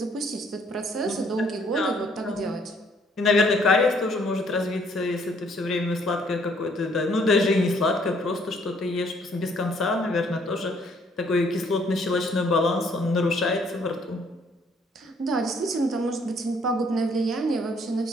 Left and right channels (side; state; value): both; normal; correlation 0.64